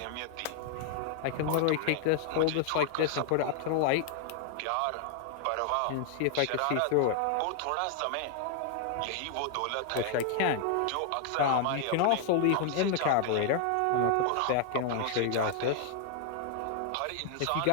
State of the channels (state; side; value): different; both; correlation 0.00